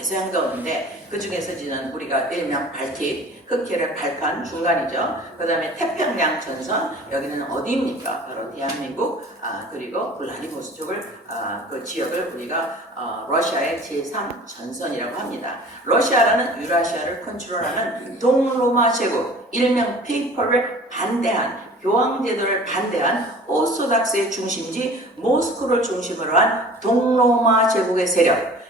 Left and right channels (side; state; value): both; normal; correlation 0.45